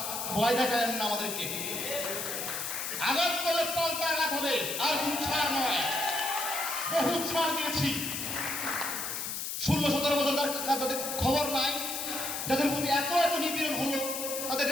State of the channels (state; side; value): noise; left; hiss, 4 dB below the sound